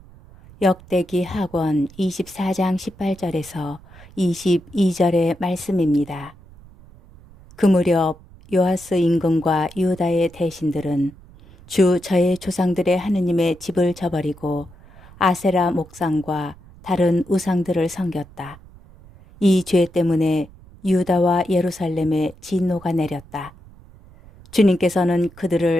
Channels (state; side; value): noise; right; rumble, 23 dB below the sound